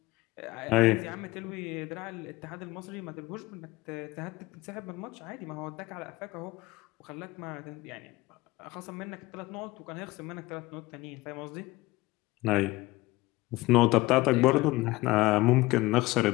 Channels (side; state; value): right; quieter; 20.1 dB